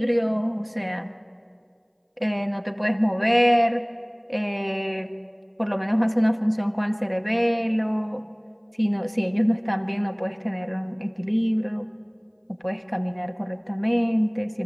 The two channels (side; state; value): both; identical; correlation 1.00